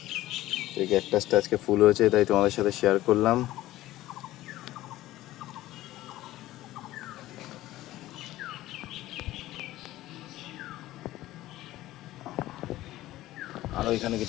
এই ক্যাকটাসটা আজকে ফুল হয়েছে তাই তোমাদের সাথে শেয়ার করলাম। আরো এখানে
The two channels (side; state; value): right; quieter; 15.7 dB